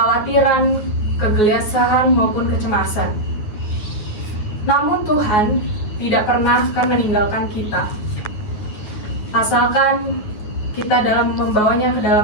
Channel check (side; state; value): right; late; 9.4 ms